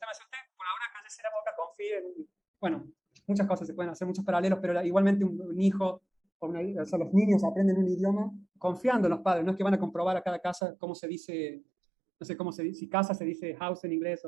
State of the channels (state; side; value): drops out; left; at 10.6 s